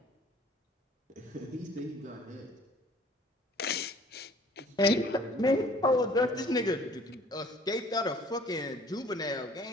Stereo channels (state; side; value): normal; both; correlation 0.54